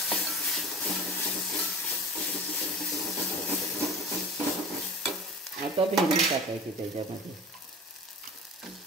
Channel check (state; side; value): normal; both; correlation 0.37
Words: आता भेंडी टाकायची, त्याच्यामध्ये